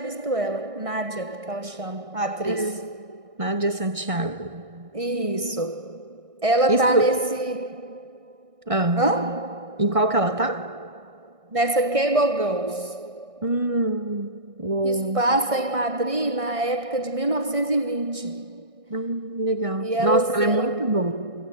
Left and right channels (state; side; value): late; left; 1.6 ms